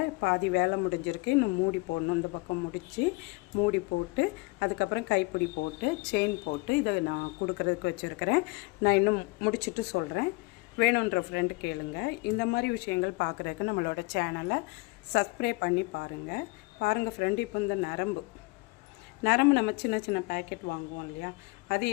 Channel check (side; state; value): right; quieter; 24.6 dB